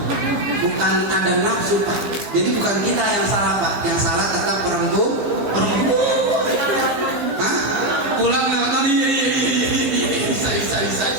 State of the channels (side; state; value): left; late; 15 ms